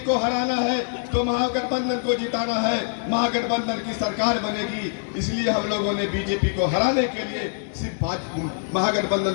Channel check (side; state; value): right; silent; digital silence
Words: को हराना है तो महागठबंधन को जिताना है, महागठबंधन की सरकार बनेगी। इसलिए हम लोगों ने बीजेपी को हराने के लिए सिर्फ महागठबंधन